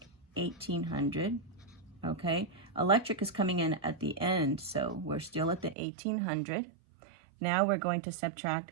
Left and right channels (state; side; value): drops out; left; at 5.8 s